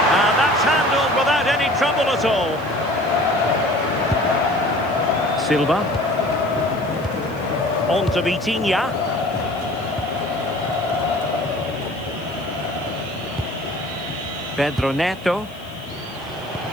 And that's handled without any trouble at all. Silva. On to Vitinha. Pedro Neto.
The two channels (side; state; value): left; noise; hiss, 26 dB below the sound